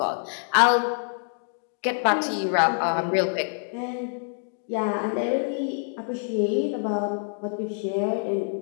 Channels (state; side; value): silent; right; 61 dB below the other